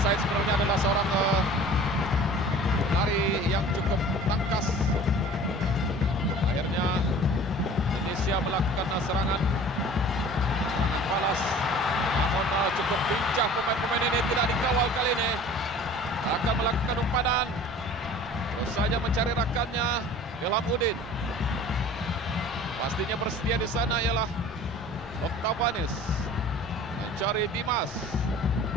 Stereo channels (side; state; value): both; normal; correlation 0.45